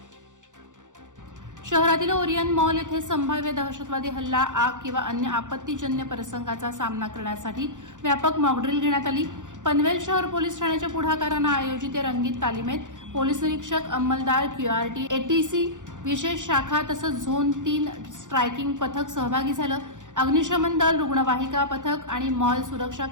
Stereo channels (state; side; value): late; left; 0.86 ms